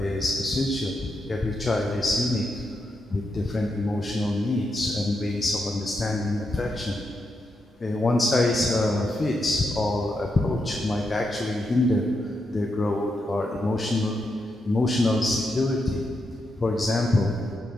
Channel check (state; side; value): normal; both; correlation 0.84